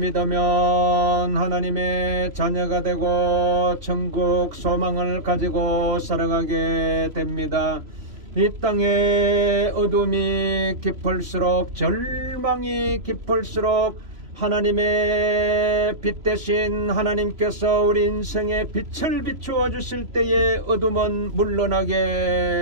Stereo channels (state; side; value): late; left; 3.0 ms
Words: 하나님의 자녀가 되고 천국 소망을 가지고 살아가게 됩니다. 이 땅의 어둠이 깊을수록, 절망이 깊을수록 하나님의 빛 대신 하나님께서 우리 인생에 빛을 비추어 주실 때에 어둠은